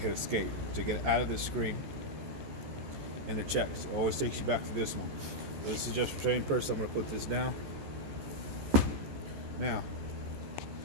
hit escape to get out of this screen, and it checks. It always takes you back to this one. This is just for training purposes. I'm going to put this down. Now,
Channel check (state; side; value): late; left; 14 ms